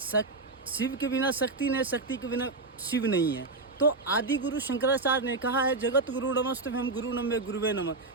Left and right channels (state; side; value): quieter; left; 3.4 dB